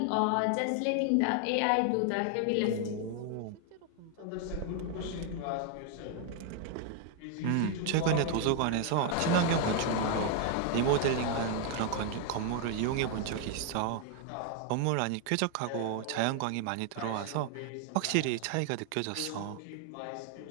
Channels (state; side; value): different; both; correlation 0.00